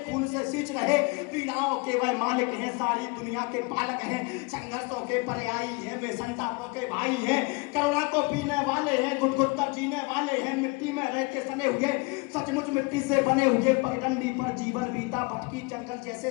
खून से सींच रहे, पीड़ाओं के वह मालिक हैं, सारी दुनिया के पालक हैं, संघर्षों के पर्यायी हैं, वे संतापों के भाई हैं, करुणा को पीने वाले हैं, गुदगुद कर जीने वाले हैं, मिट्टी में रहते सने हुए, सचमुच मिट्टी से बने हुए, पगडंडी पर जीवन बीता, भटकी जंगल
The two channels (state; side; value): quieter; right; 27.7 dB